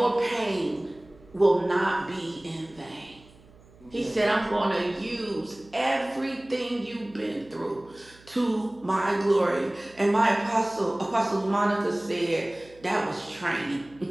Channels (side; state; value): right; noise; hum, 26 dB below the sound